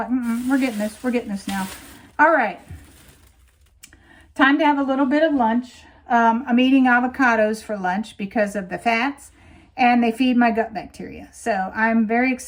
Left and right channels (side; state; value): both; identical; correlation 1.00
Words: we're getting this. We're getting this now. All right. Time to have a little bit of lunch. I'm eating avocados for lunch because of the fats, and they feed my gut bacteria. So I'm very